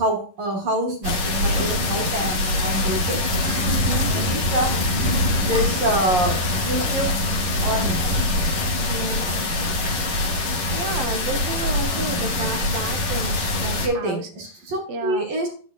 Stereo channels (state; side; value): late; left; 11 ms